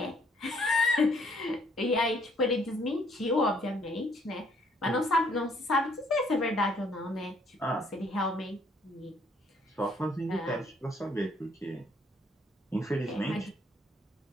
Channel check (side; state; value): both; normal; correlation 0.65